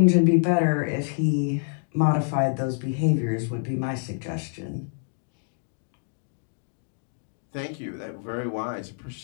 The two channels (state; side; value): silent; right; digital silence